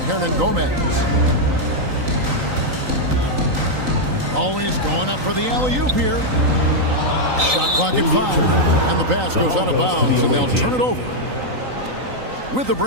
Gomez. Always going up for the alley-oop here. Shot clock at 5. And the pass goes out of bounds, and they'll turn it over. With the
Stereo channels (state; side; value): late; left; 3.9 ms